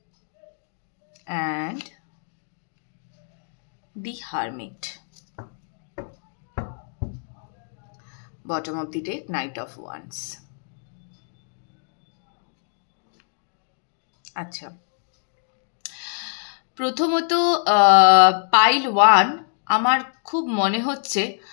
And the Hermit. Bottom of the deck, Knight of Wands. আচ্ছা, প্রথমত পাইল 1, আমার খুব মনে হচ্ছে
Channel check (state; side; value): silent; right; 61 dB below the other